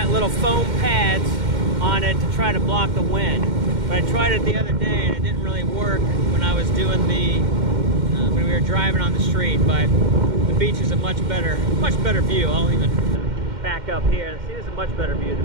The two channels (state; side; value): late; left; 2.1 ms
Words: little foam pads on it to try to block the wind. But I tried it the other day and it didn't really work when I was doing the when we were driving on the street. But the beach is a much better view. I'll even back up here. See, this is a much better view of the